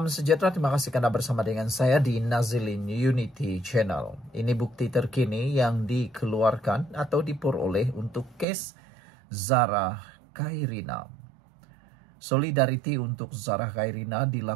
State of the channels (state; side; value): drops out; left; at 8.5 s